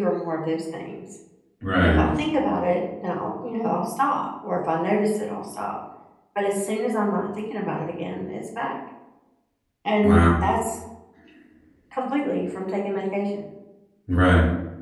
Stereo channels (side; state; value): both; identical; correlation 1.00